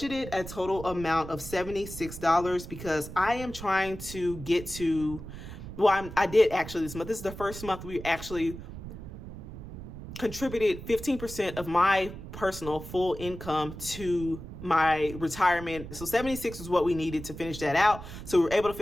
a total amount of $76 because I am trying to get to, I did actually this month. This is the first month we actually contributed 15% of my personal full income to my retirement. So 76 is what we needed to finish that out. So we were able to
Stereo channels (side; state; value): right; noise; rumble, 11 dB below the sound